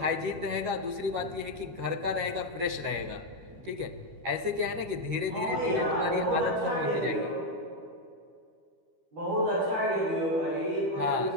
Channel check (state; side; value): late; left; 12 ms